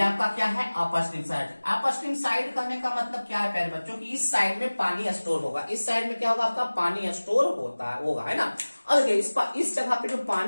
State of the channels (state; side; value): inverted; both; correlation -1.00